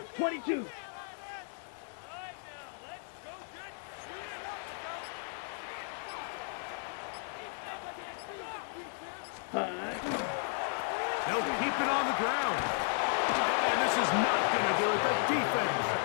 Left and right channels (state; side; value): silent; right; 55 dB below the other